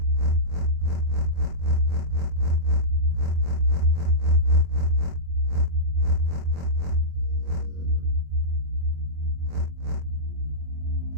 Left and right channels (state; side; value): late; left; 24 ms